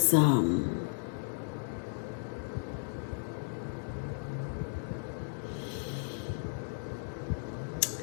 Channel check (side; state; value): right; silent; digital silence